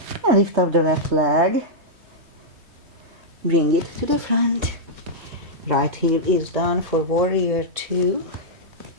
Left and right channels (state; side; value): late; left; 3.2 ms